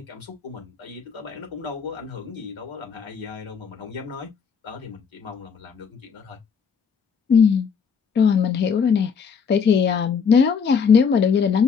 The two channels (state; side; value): quieter; right; 6.3 dB